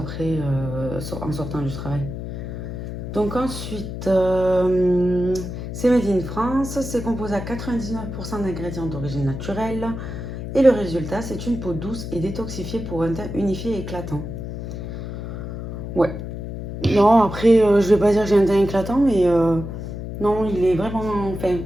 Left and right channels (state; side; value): noise; left; hum, 7 dB below the sound